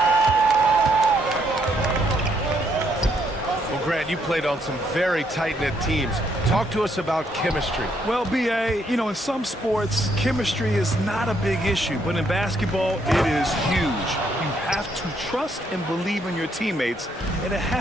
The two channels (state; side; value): normal; both; correlation 0.73